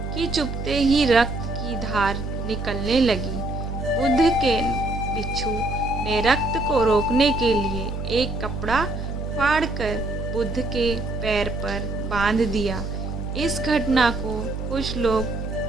कि चुभते ही रक्त की धार निकलने लगी। बुद्ध के भिक्षु ने रक्त को रोकने के लिए एक कपड़ा फाड़कर बुद्ध के पैर पर बांध दिया। इस घटना को कुछ लोग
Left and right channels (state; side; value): noise; right; hum, 5 dB below the sound